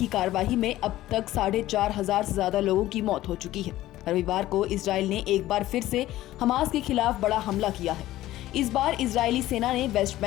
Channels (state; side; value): quieter; right; 15.2 dB